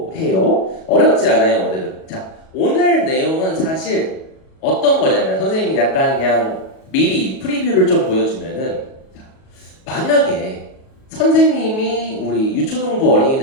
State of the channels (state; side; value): late; right; 37 ms